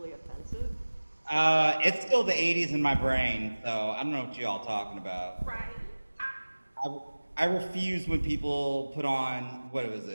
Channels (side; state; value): both; inverted; correlation -1.00